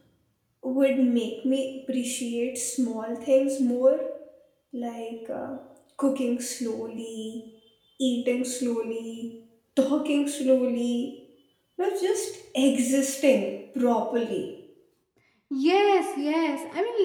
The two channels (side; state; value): both; identical; correlation 1.00